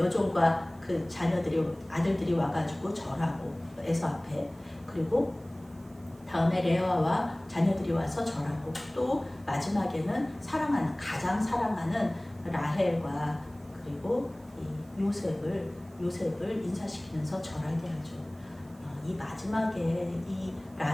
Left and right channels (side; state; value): right; noise; hiss, 29 dB below the sound